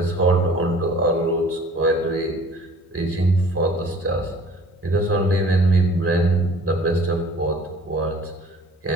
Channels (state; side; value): normal; both; correlation 0.50